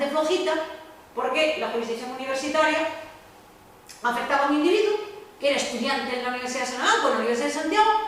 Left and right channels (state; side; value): identical; both; correlation 1.00